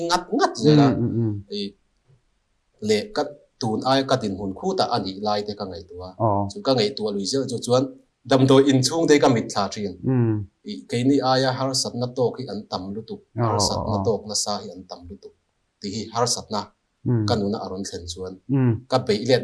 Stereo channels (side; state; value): both; identical; correlation 1.00